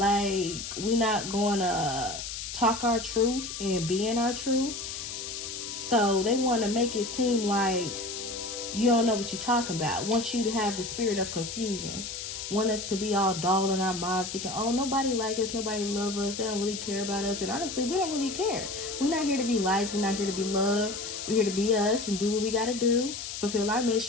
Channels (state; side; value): noise; left; hiss, 7 dB below the sound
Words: we're not going to talk our truth and be in our truth. So they want to make it seem like you don't know what you're talking about. Want you to have the spirit of confusion. Want us to be all dull in our mind, thinking, oh, nobody like us, nobody love us, they don't really care about us. And honestly, we don't really care. We're not here to be liked, we're not here to be loved. We're here to be us and do what we got to do, fulfill our